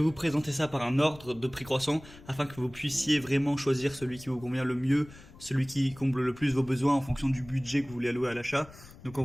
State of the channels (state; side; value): noise; left; rumble, 20 dB below the sound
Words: présenter ça par un ordre de prix croissant afin que vous puissiez vraiment choisir celui qui vous convient le mieux, celui qui comble le plus vos besoins en fonction du budget que vous voulez allouer à l'achat. Donc en